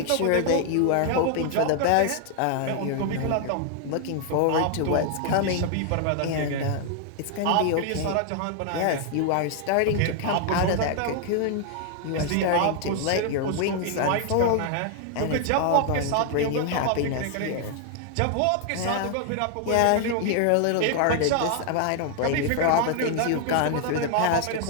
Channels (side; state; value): both; different; correlation 0.00